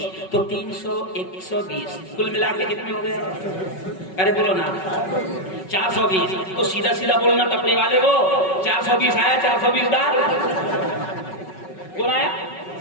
تو 300 120 کل ملا کے کتنے ہو گئے. ارے بولو نا 420, تو سیدھا سیدھا بولنا ٹپری والے کو 420 آیا, 420 ڈال. کون آیا,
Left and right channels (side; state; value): right; late; 5.4 ms